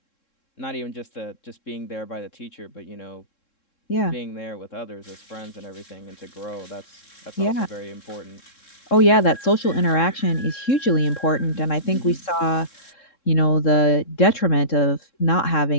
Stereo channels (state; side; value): late; right; 3.7 ms